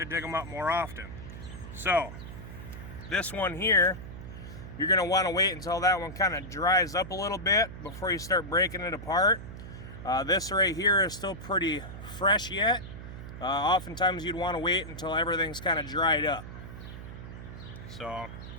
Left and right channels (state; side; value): noise; right; hum, 11 dB below the sound